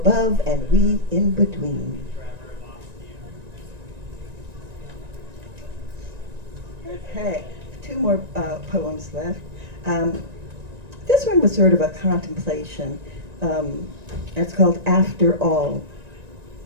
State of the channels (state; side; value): late; left; 1.9 ms